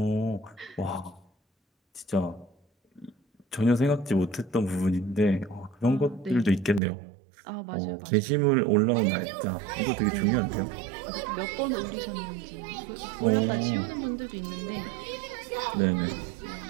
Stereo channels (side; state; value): left; drops out; at 6.8 s